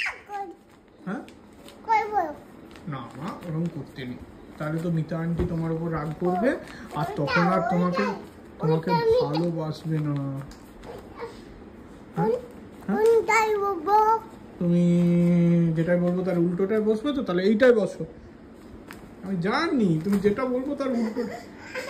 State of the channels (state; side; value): identical; both; correlation 1.00